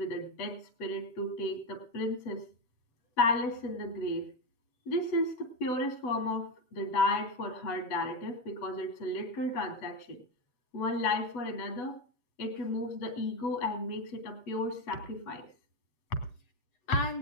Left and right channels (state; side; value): late; right; 8.1 ms